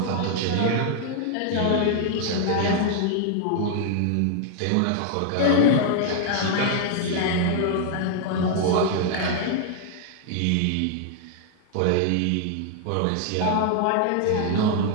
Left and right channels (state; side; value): different; both; correlation 0.00